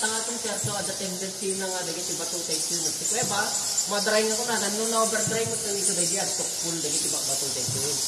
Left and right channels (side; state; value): both; identical; correlation 1.00